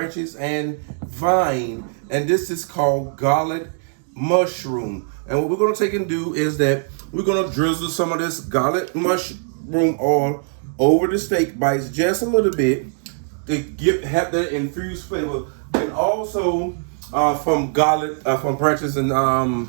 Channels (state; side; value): silent; left; 65 dB below the other